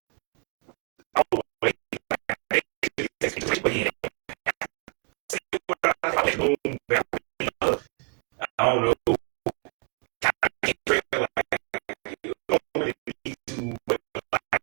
oh, wait, I don't know. I can't feel like you don't really need to, but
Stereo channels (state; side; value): quieter; left; 35.7 dB